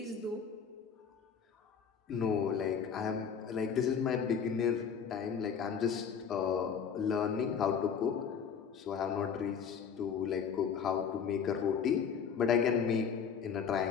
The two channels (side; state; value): right; quieter; 6.9 dB